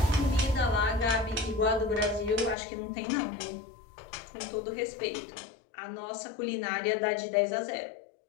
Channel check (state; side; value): drops out; right; at 2.6 s